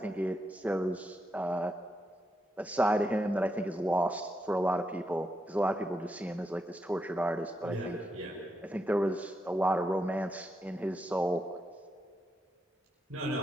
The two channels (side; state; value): both; normal; correlation 0.84